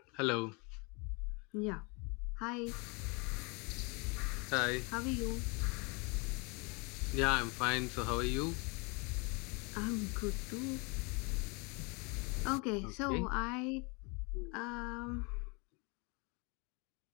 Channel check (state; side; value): quieter; right; 30.7 dB